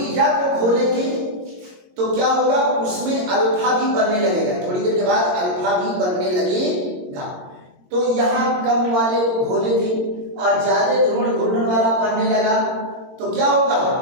को घोलेंगे तो क्या होगा? उसमें अल्फा भी बनने लगेगा, थोड़ी देर के बाद अल्फा भी बनने लगेगा। तो यहाँ कम वाले को घोले थे और ज्यादा ध्रुवण घूर्णन वाला बनने लगा, तो क्या होगा?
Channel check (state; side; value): late; left; 22 ms